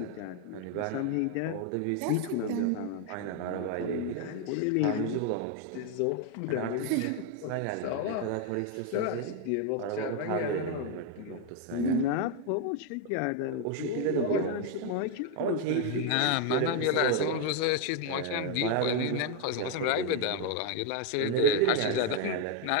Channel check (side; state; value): both; different; correlation 0.01